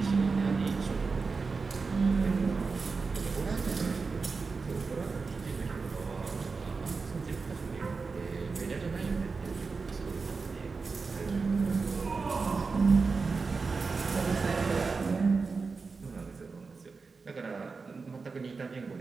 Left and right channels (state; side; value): quieter; left; 4.5 dB